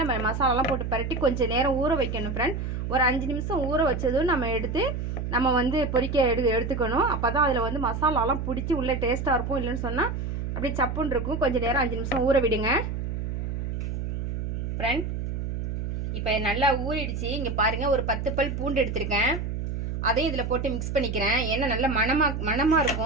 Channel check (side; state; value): right; noise; hum, 3 dB below the sound